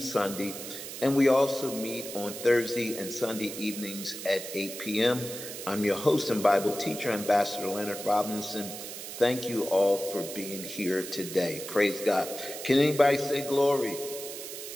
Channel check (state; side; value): noise; right; hiss, 9 dB below the sound